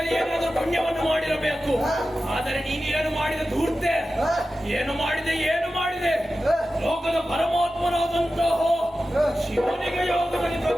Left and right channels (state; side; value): normal; both; correlation 0.94